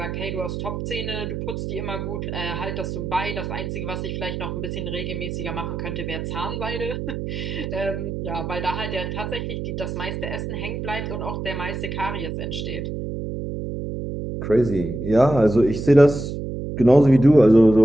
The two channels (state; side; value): noise; right; hum, 5 dB below the sound